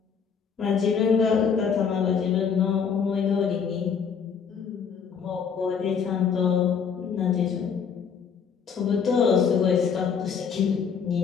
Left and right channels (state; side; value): quieter; right; 6.6 dB